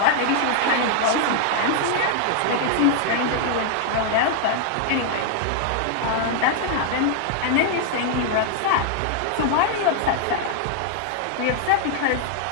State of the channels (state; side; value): different; both; correlation 0.00